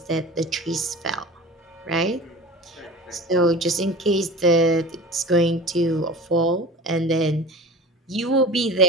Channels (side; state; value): both; normal; correlation 0.38